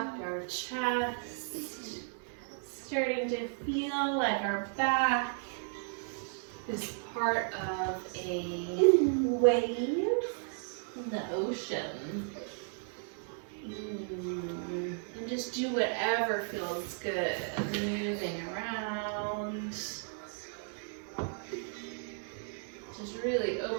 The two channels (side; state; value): left; silent; 55 dB below the other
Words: our chest, starting to feel like our back is part of a wave in the ocean. And just do whatever feels good, moving around. Just really